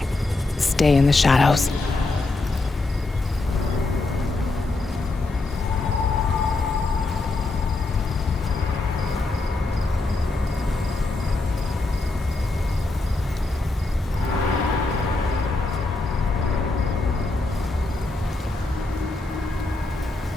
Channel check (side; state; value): right; quieter; 3.2 dB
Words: Stay in the shadows.